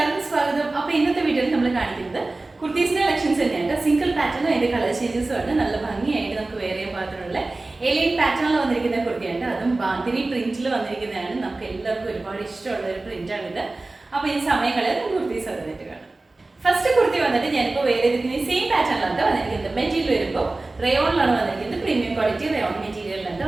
സ്വാഗതം. അപ്പോൾ ഇന്നത്തെ വീഡിയോയിൽ നമ്മൾ കാണിക്കുന്നത് കുർത്തീസിന്റെ കളക്ഷൻസ് തന്നെയാണ്. സിംഗിൾ പാറ്റേണും അതിന്റെ കളർ ചേഞ്ചസും ആണ്. നല്ല ഭംഗിയായിട്ട് നമുക്ക് വേറെ പാറ്റേണുള്ള ഏലിയൻ പാറ്റേണിൽ വന്നിരിക്കുന്ന കുർത്തിയുണ്ട്. അതും ബാന്തിനി പ്രിന്റിൽ വന്നിരിക്കുന്നതാണ്. നമുക്ക് എല്ലാവർക്കും ഒരുപാട് ഇഷ്ടമുള്ള ഒരു പ്രിന്റാണിത്. അപ്പോൾ ഈ സമയങ്ങളിൽ കുർത്തീസ് വന്നിട്ട് കാണാം. ഫസ്റ്റ് കുർത്തി വന്നിട്ട് ഞാനിപ്പോൾ വേറെ സെയിം പാറ്റേണിലാണ് വന്നിരിക്കുന്നത്. മെറ്റീരിയൽ വരുമ്പോൾ റയോണിലാണ് വന്നിരിക്കുന്നത്. പ്രീമിയം ക്വാളിറ്റി റയോൺ മെറ്റീരിയലിലാണ്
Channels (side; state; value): left; quieter; 3.1 dB